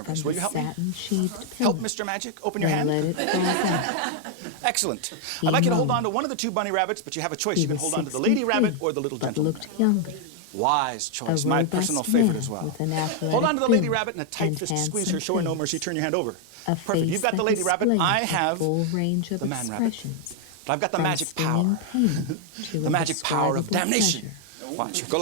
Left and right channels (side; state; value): both; different; correlation 0.00